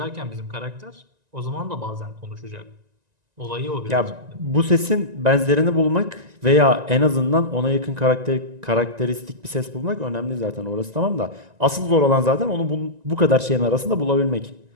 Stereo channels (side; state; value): left; late; 1.9 ms